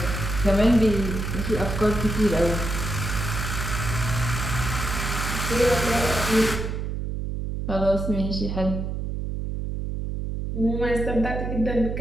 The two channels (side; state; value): right; noise; hum, 3 dB below the sound